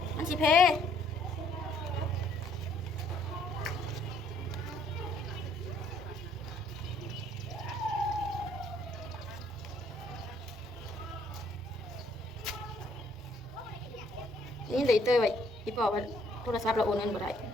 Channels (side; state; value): both; normal; correlation 0.65